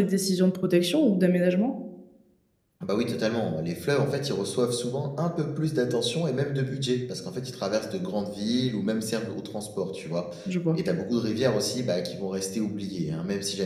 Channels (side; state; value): both; identical; correlation 1.00